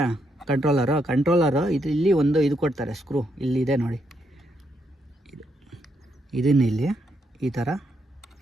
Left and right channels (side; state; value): both; normal; correlation 0.78